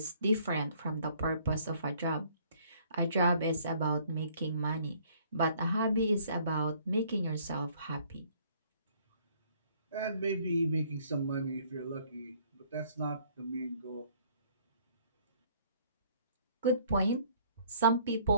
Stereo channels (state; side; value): inverted; both; correlation -0.60